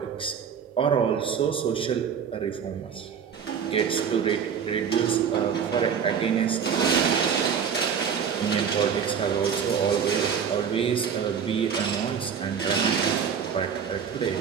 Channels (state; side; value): quieter; left; 7.2 dB